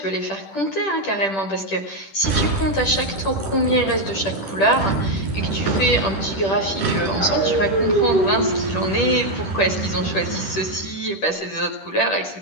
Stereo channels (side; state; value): right; late; 10 ms